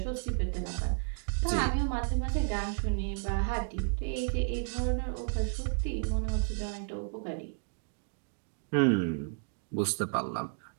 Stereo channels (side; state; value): left; silent; 56 dB below the other